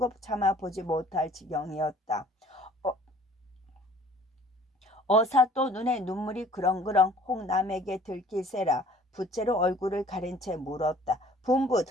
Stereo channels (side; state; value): both; normal; correlation 0.53